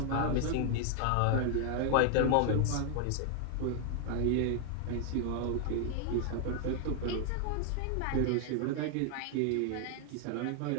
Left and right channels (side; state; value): both; different; correlation 0.00